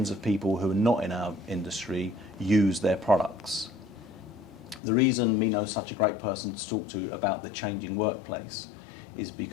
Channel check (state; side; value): drops out; right; at 4.8 s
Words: of people who are not in our industry use their products. The reason Mino is such a great person to talk to about the changing workplace is